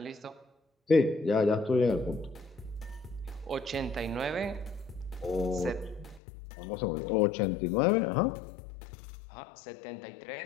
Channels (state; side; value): drops out; right; at 6.2 s